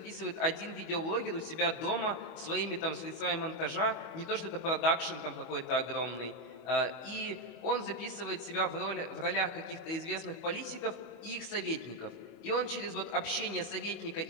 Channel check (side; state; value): right; late; 25 ms